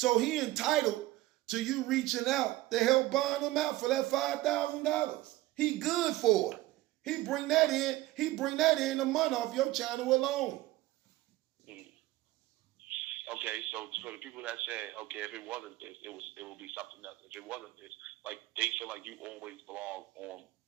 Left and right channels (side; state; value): left; quieter; 17.6 dB